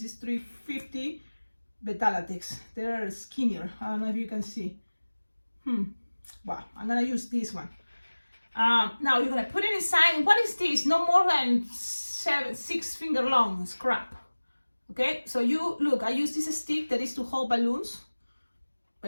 is 350 Beta-Latex. They're skinnier. I don't know if you can see. Well, I'm gonna use this one. Now you're gonna put it inside. What is this? No more than 6 finger long scrap. Okay, so you look, I use this stick that is to hold balloons,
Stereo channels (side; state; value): both; inverted; correlation -1.00